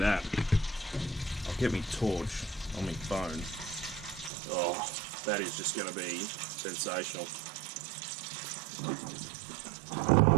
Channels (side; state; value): left; drops out; at 4.3 s